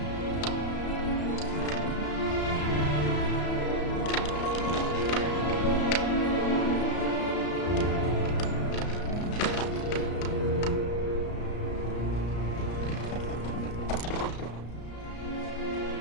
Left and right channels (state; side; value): late; right; 34 ms